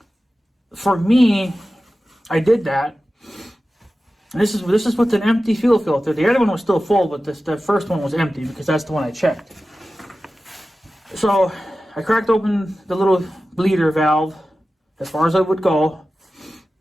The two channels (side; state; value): both; normal; correlation 0.95